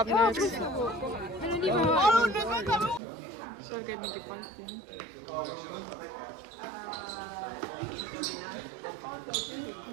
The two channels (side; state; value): left; drops out; at 3.0 s